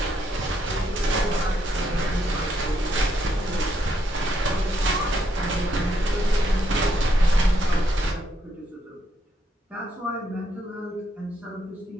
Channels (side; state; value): both; normal; correlation 0.76